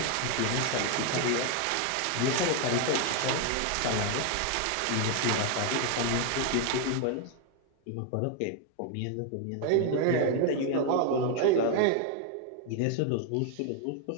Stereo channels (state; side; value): different; both; correlation 0.01